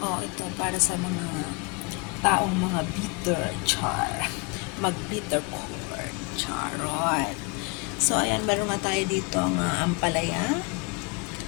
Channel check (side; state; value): right; quieter; 29.1 dB